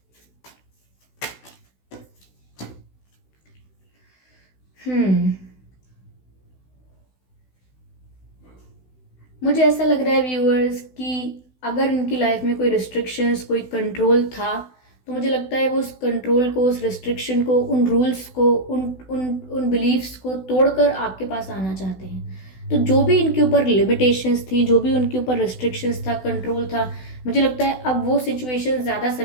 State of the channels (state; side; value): late; right; 16 ms